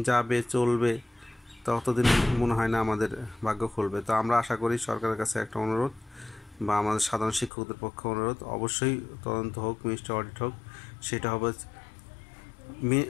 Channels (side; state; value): right; drops out; at 7.5 s